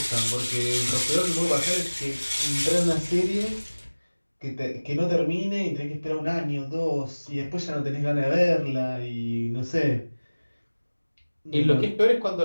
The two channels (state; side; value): inverted; both; correlation -1.00